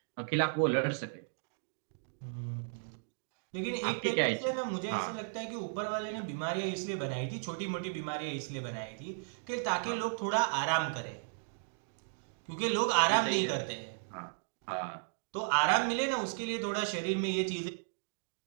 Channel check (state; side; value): silent; left; digital silence